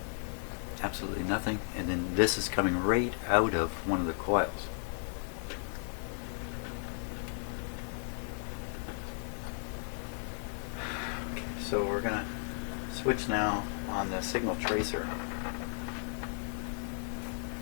Absolutely nothing, and then this is coming right out of one of the coils. Okay, so we're gonna switch now on the signal tracer.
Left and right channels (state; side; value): silent; right; 55 dB below the other